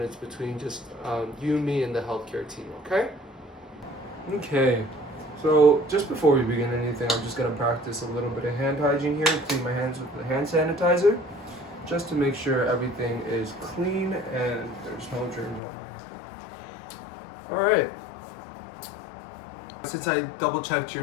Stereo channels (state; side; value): drops out; right; at 15.6 s